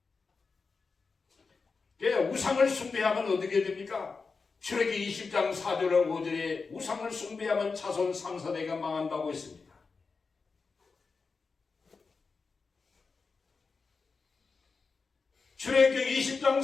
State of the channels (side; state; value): right; quieter; 4.6 dB